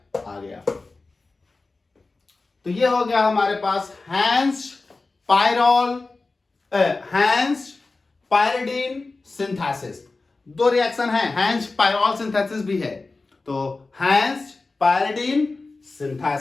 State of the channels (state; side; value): quieter; right; 3.6 dB